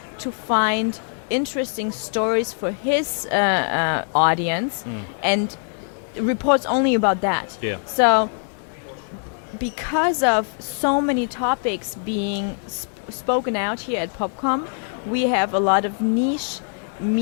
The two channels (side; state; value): right; silent; 58 dB below the other